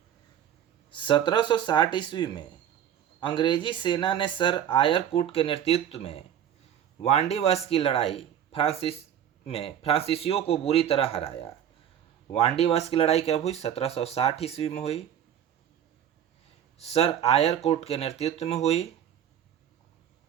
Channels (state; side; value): quieter; left; 9.9 dB